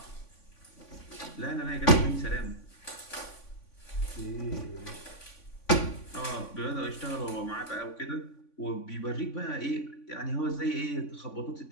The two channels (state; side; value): late; right; 3.5 ms